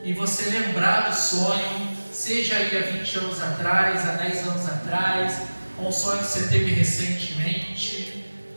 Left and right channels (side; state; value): both; inverted; correlation -1.00